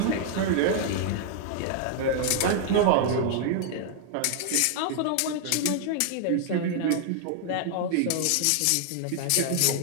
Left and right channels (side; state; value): both; different; correlation 0.00